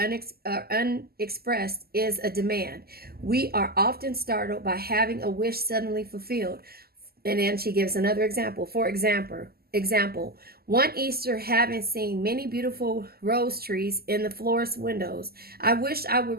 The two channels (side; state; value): left; late; 0.45 ms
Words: is a demand. We are often startled by having a wish suddenly fulfilled. And then she gives another example. For example, one Easter, having seen many beautiful rose trees in the florist's windows, I wished I would